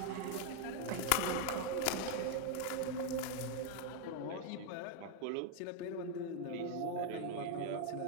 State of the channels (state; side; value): different; both; correlation 0.01